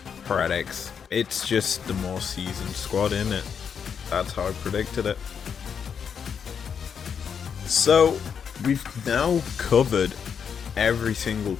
Heretics. It's just the more seasoned squad, isn't it? That's how I predicted it. So, we've now covered every single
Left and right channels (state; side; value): quieter; right; 7.1 dB